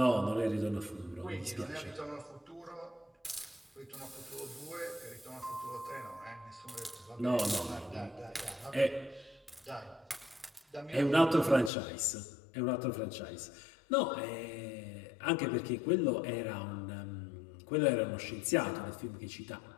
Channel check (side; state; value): right; drops out; at 11.7 s